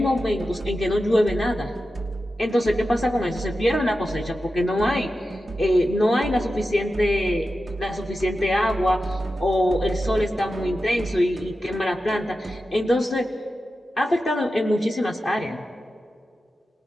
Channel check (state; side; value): normal; both; correlation 0.92